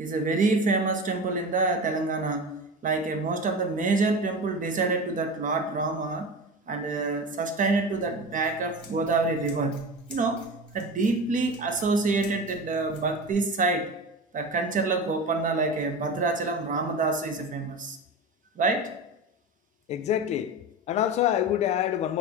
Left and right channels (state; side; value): normal; both; correlation 0.28